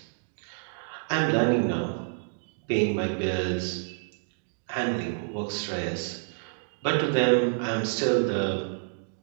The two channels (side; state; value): left; silent; digital silence